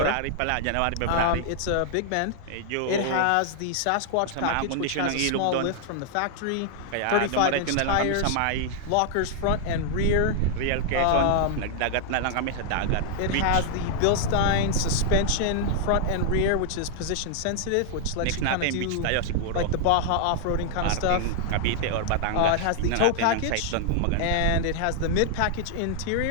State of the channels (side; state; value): both; different; correlation -0.01